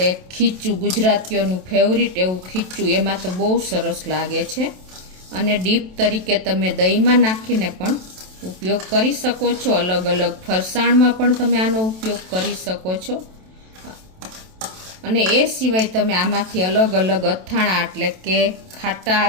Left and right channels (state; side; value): late; left; 27 ms